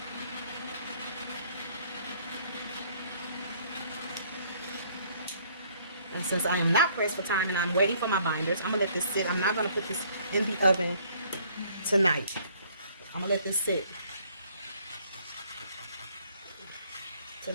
And since I am not pressed for time and I'm waiting for my binders, I'm gonna let this sit. I'm not gonna put this in the oven tonight. I'm gonna let this sit to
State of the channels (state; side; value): inverted; both; correlation -0.61